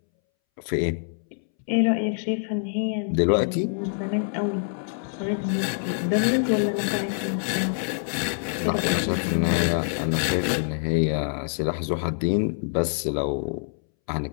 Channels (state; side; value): silent; right; 61 dB below the other